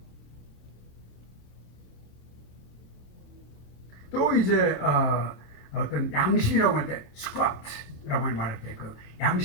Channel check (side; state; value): right; late; 27 ms